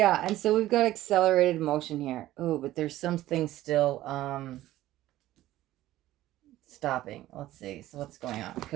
and so we've got accelerated motion here. Oh, but there's something still stopping. Let's see. So what's going on?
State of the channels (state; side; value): quieter; left; 15.0 dB